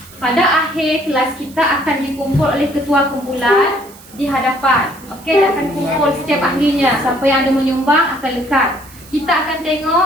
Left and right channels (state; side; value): noise; right; hiss, 22 dB below the sound